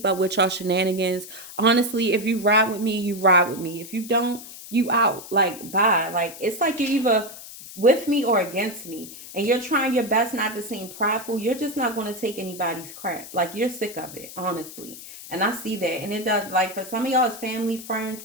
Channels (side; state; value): left; noise; hiss, 14 dB below the sound